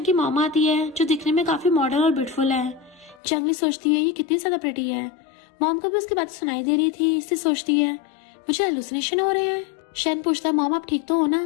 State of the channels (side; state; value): right; drops out; at 3.2 s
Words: की मॉम आती है जो दिखने में काफी मॉडर्न और ब्यूटीफुल है। जंगली सोचती है ये कितनी ज्यादा प्रिटी है। मॉम को भी उसकी बातें सुनाई दे रही थी, इससे सोचती है मुझे हेलुसिनेशन हो रहे हैं। शन पूछता है मॉम आप ठीक तो हो ना?